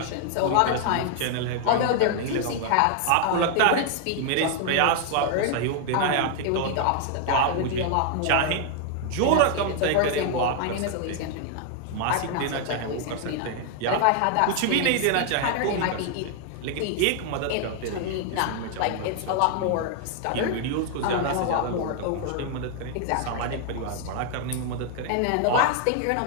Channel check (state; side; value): different; both; correlation 0.00